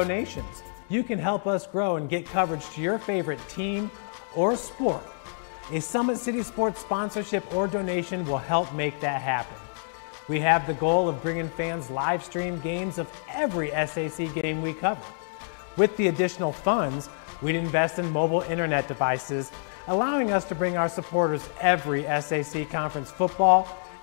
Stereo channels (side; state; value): right; silent; digital silence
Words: You can help us grow and get coverage to your favorite team or sport. A Summit City Sports sponsorship or donation will help make that happen. We have the goal of bringing fans live stream games of every SAC game we cover. With the additional funds, we'd invest in mobile internet devices, allowing us to bring our supporters every SAC conference football